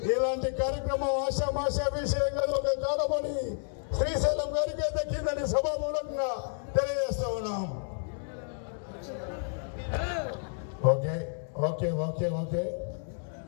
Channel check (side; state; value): right; silent; digital silence